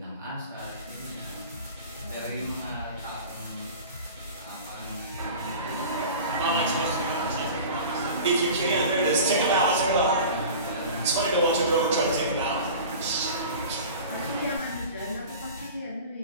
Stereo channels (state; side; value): inverted; both; correlation -0.38